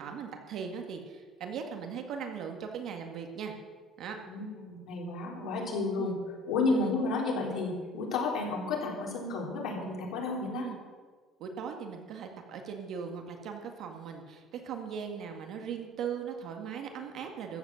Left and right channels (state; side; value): normal; both; correlation 0.45